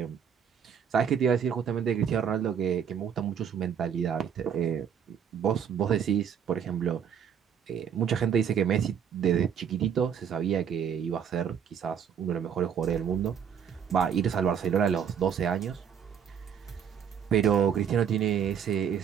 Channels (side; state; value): left; quieter; 8.0 dB